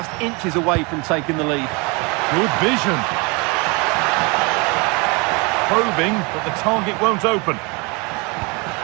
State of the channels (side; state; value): left; quieter; 29.1 dB